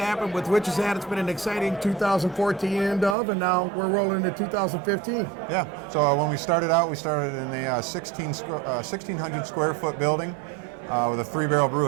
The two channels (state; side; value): drops out; left; at 3.2 s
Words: with Witch's Hat. It's been an exciting 2014 end of, and now we're rolling into 2015. Yeah, so when we started out, we started in a 1,600 square foot building with a 3-barrel